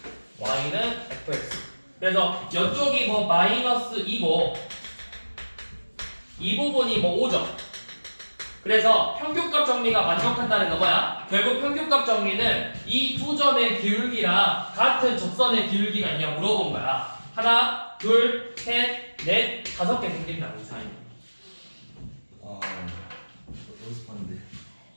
y는 fx. 그래서 이쪽이 뭐 마이너스 2고 이 부분이 뭐 5죠. 그래서 평균값 정리가 만족한다는 건 뭐야? 결국 평균값 정리는 이 두 점의 기울기랑 같은 접선의 기울기가 있냐 물어본 거야. 하나, 둘, 셋, 넷, 5개 생긴다고 이 사이. 연습하는데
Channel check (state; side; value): inverted; both; correlation -1.00